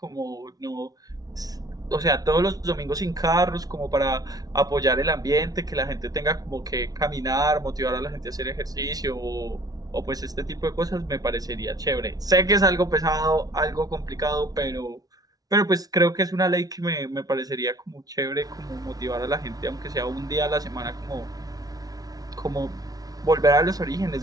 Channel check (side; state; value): left; late; 0.18 ms